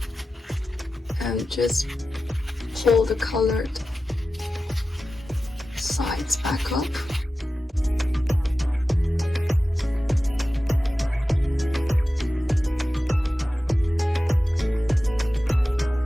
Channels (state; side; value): normal; both; correlation 0.94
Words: And just pull the colored sides back up.